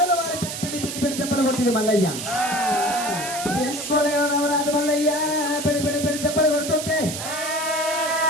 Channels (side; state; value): right; noise; hiss, 6 dB below the sound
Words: వారి పిడి తెప్పలు కొట్టింది మల్లయ్య 2 కోలాలు రాజు మల్లయ్య పిడి తెప్పలు కొడుతుంటే